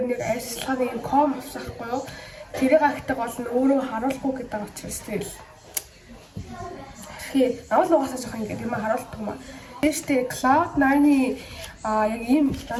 нь айс ашиглагын ком авсан байхгүй юу? Тэрийг агтаг бол нь өөрөө харуулахгүй гэдэг учраас тэгэл. Тэгэхээр авал угаасаа жоох ингээд юм харуулдаг юм аа. Тэштэй Cloud9-ийн яг ийм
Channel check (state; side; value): identical; both; correlation 1.00